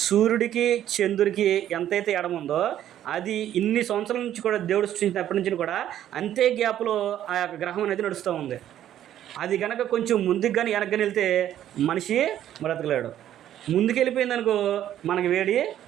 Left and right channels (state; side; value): quieter; left; 11.5 dB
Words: సూర్యుడికి చంద్రుడికి ఎంతైతే ఎడమ ఉందో అది ఇన్ని సంవత్సరాల నుంచి కూడా దేవుడు సృష్టించినప్పటి నుంచి కూడా అంతే గ్యాప్లో ఆ యొక్క గ్రహం అనేది నడుస్తూ ఉంది. అది కనుక కొంచెం ముందుకు కానీ వెనక్కి కానీ వెళ్తే మనిషి బ్రతకలేడు. ముందుకు వెళ్ళిపోయిందనుకో మనకి వేడి